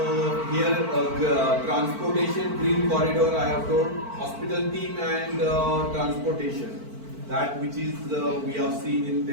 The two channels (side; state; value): left; late; 4.5 ms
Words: here transportation, green corridor I have told, hospital team and transportation. That which is we have seen in